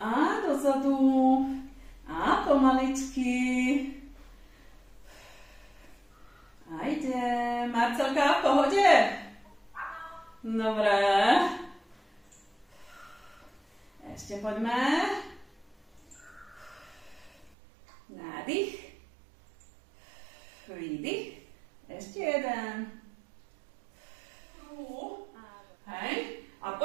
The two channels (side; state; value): left; drops out; at 17.5 s